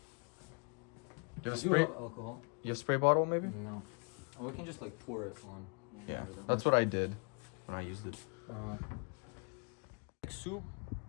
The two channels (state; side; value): quieter; right; 35.8 dB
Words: you have Do spray? have alcohol? You have spray bottle maybe? No. Oh, we can just like pour it on. Yeah, that's what I did when I used it. Like soup.